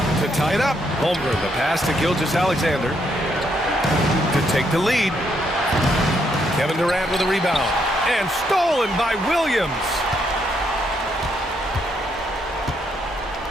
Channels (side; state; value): both; normal; correlation 0.75